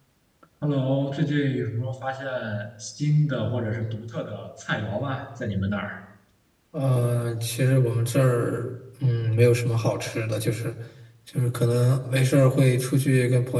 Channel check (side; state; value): both; identical; correlation 1.00